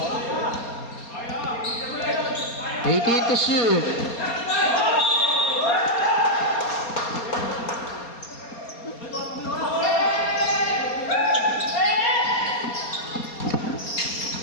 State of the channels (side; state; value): right; late; 4.3 ms